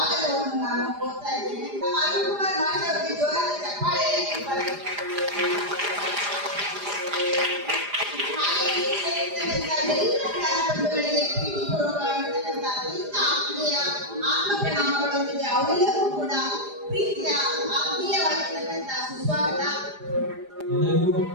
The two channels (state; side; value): late; left; 4.9 ms